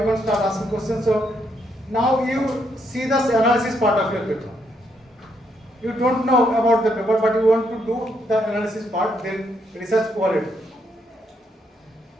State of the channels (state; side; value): normal; both; correlation 0.75